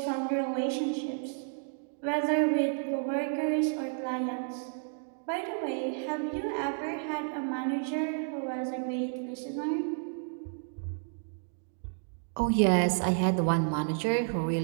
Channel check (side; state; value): left; silent; 57 dB below the other